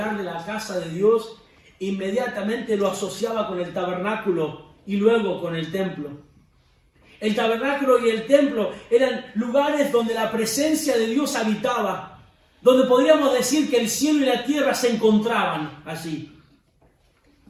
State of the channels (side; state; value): both; identical; correlation 1.00